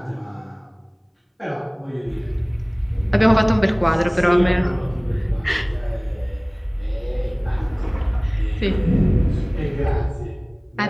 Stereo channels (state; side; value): identical; both; correlation 1.00